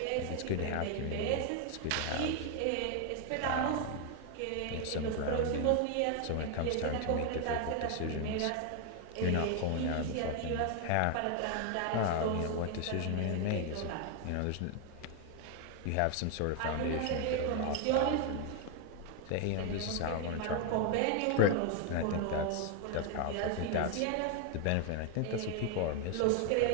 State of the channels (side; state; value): both; different; correlation 0.01